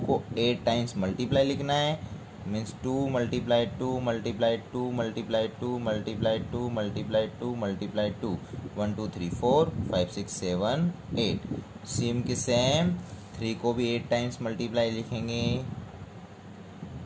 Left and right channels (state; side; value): identical; both; correlation 1.00